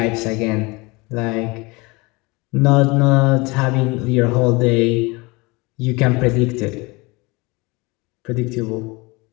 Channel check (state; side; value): quieter; right; 25.2 dB